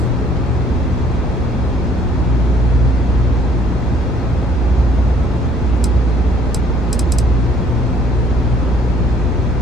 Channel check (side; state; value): both; normal; correlation 0.60